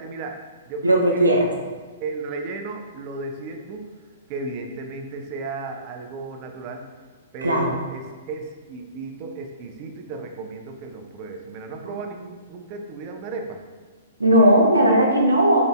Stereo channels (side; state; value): both; inverted; correlation -0.55